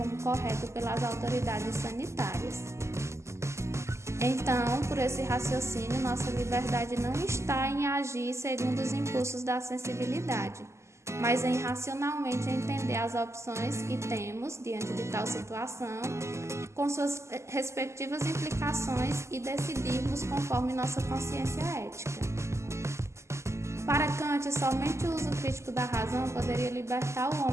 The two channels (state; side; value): late; left; 0.13 ms